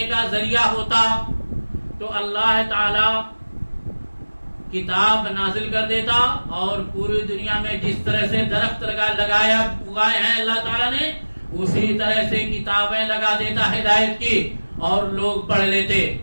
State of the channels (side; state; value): both; inverted; correlation -1.00